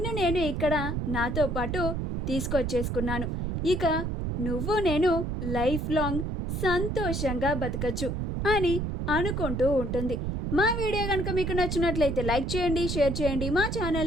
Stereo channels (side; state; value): right; noise; rumble, 2 dB below the sound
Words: నేను ఇక్కడ నాతో పాటు తీసుకొచ్చేసుకున్నాను. ఇక నువ్వు నేను లైఫ్ లాంగ్ సంతోషంగా బతకచ్చు అని అనుకుంటూ ఉంటుంది. మా వీడియో కనుక మీకు నచ్చినట్లయితే లైక్ చేయండి, షేర్ చేయండి, మా